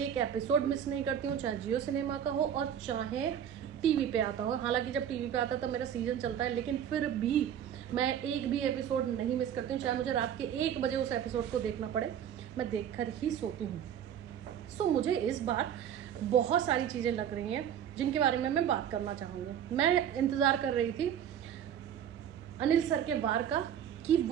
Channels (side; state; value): left; quieter; 9.4 dB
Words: एपिसोड मिस नहीं करती हूँ, चाहे जियो सिनेमा का हो और चाहे टीवी पे आता हो। हालांकि जब टीवी पे आता है तब मेरा सीजन चलता है, लेकिन फिर भी मैं एक भी एपिसोड नहीं मिस करती हूँ। चाहे मुझे रात के 1 बजे उस एपिसोड को देखना पड़े, मैं देखकर ही सोती हूँ। सो मुझे इस बार बहुत सारी चीज़ें लग रही हैं जिनके बारे में मैं बात करना चाहूँगी। मैं इंतज़ार कर रही थी अनिल सर के वार का कि